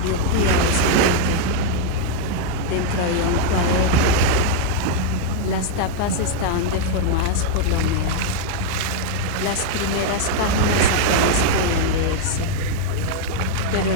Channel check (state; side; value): different; both; correlation 0.00